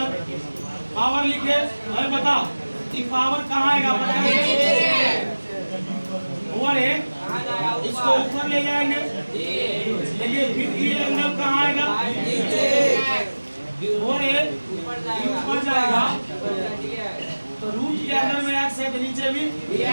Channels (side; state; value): both; inverted; correlation -1.00